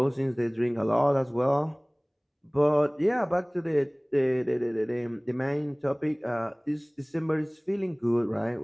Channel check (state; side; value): identical; both; correlation 1.00